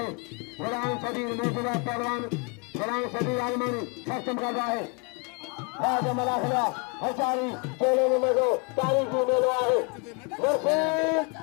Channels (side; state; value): right; quieter; 32.9 dB